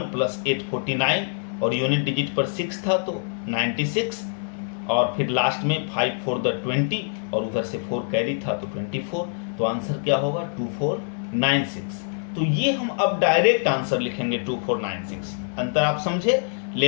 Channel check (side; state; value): right; silent; digital silence